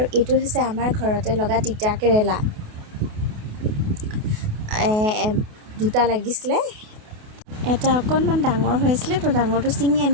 এইটো হৈছে আমাৰ ঘৰতে লগা তিতা কেৰেলা, দুটা লাগিছিলে। এটা অকণমান ডাঙৰ হৈ আছিলে, তো ডাঙৰটো ছিঙি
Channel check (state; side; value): late; left; 28 ms